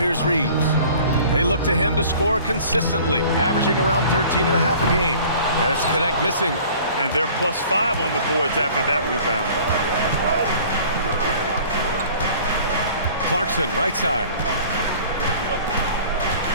Reeves. They look to him to score consistently, averaging around 13.5 a game. And it's Connect missing. And they're +5 on the boards after that rebound. Clarkson, right side.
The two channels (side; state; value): both; inverted; correlation -0.48